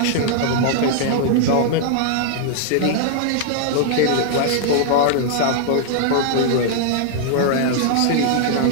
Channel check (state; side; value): different; both; correlation -0.01